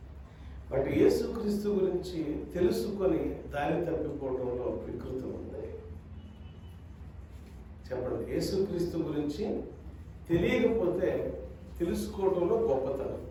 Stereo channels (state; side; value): identical; both; correlation 1.00